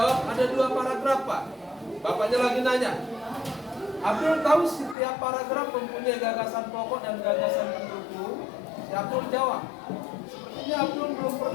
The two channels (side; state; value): right; drops out; at 5.0 s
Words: ada 2 paragraf, Pak. Bapaknya lagi nanya. Abdul tahu setiap paragraf mempunyai gagasan pokok dan gagasan pendukung. Si Abdul jawab, sepertinya Abdul belum